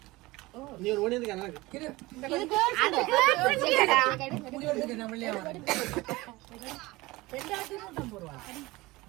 நீ ஒரு ஓடி இருக்க எனக்கு இது இது girls food. முடி வந்து நம்ம இல்லையா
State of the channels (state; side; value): quieter; left; 20.8 dB